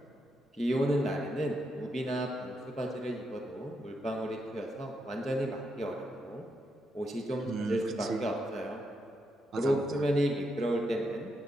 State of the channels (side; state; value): both; normal; correlation 0.82